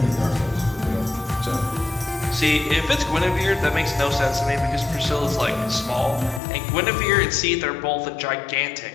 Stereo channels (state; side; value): drops out; right; at 6.4 s